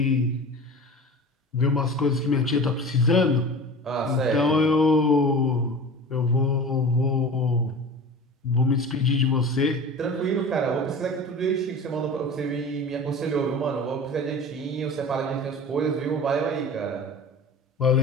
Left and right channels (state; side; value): normal; both; correlation 0.36